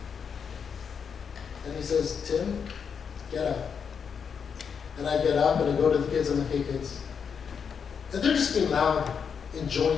And he says, Tim, get up. And I get up and I go to the kids and I'm like, hey kids. And they're just being loud,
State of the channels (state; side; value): quieter; right; 6.7 dB